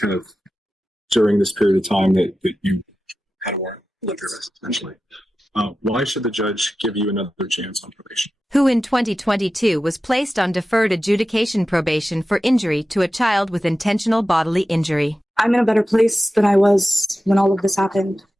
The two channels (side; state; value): both; normal; correlation 0.93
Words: of during this period of time that you had a warrant of Yes. arrest, essentially. Why should the judge give you another chance on probation? Who in 2022 was placed on deferred adjudication probation for injury to a child with intentional bodily injury. I'm in a better place than I was when all of this happened.